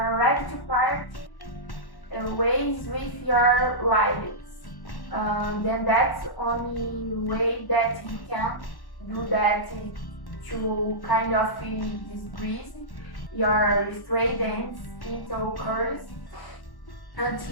to part ways with your rivals, then that's the only way that you can do that to kind of decrease your straight ends into curls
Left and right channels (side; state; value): right; late; 1.1 ms